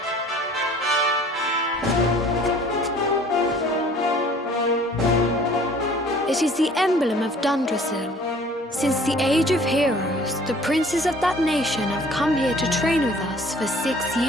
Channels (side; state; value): both; normal; correlation 0.52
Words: It is the emblem of Dundrasil. Since the age of heroes, the princes of that nation have come here to train with us for 6